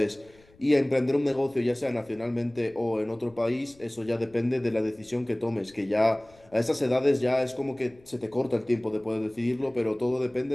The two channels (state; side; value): noise; left; rumble, 28 dB below the sound